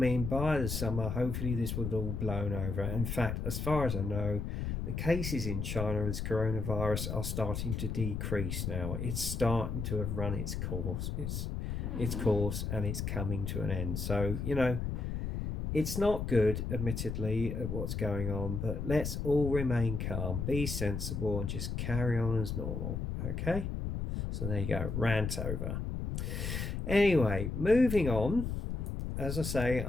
by the summer, hopefully this would have all blown over. In fact, as far as I know, the cases in China with coronavirus are starting to decrease now. It's starting to have run its course. Its course, and it's coming to an end. So, it's not good, admittedly, at what's going on, but let's all remain calm, be sensible, and just carry on as normal. Okay? So there you go, rant over. Anyway, moving on. As I say,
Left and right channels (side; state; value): left; noise; rumble, 3 dB below the sound